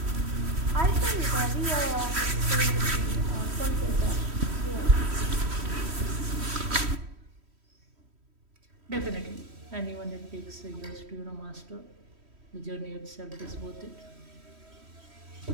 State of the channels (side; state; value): left; late; 3.1 ms